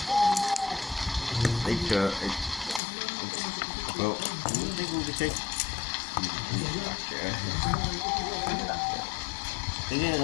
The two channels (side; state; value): right; drops out; at 2.8 s